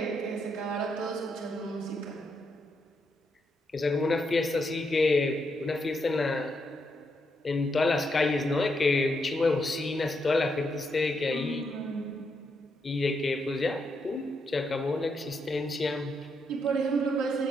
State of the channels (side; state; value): both; normal; correlation 0.80